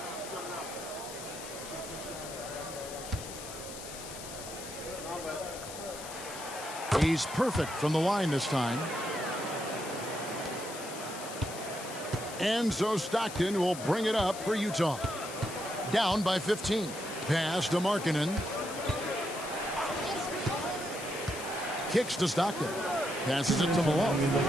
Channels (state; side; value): noise; left; hiss, 11 dB below the sound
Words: He's perfect from the line this time. And so Stockton will bring it up for Utah. Down by 15. Pass to Markkanen. Kicks to Stockton. Passes it to Malone.